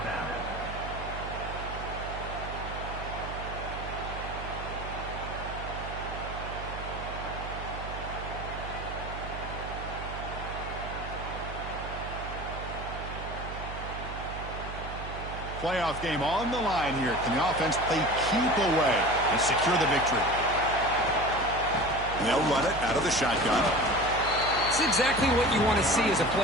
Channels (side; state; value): right; noise; hum, 9 dB below the sound